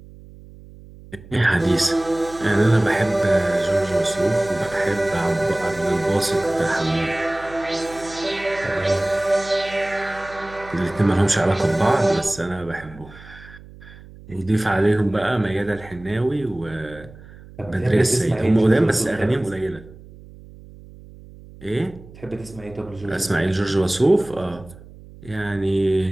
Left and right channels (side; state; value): right; noise; hum, 20 dB below the sound